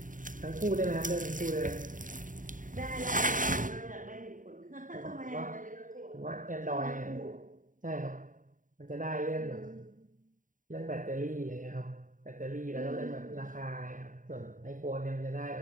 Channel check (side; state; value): left; late; 0.38 ms